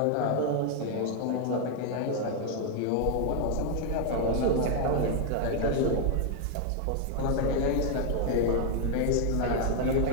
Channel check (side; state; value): both; different; correlation 0.00